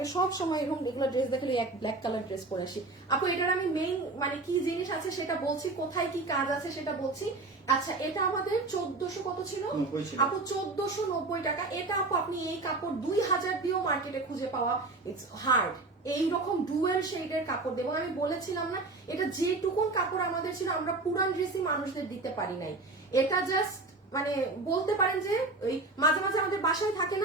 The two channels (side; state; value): left; quieter; 3.3 dB